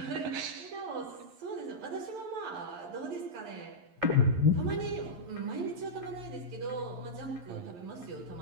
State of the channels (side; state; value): left; late; 11 ms